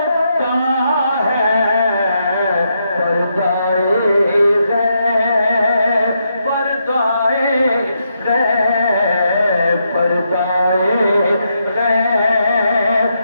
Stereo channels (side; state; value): both; inverted; correlation -0.80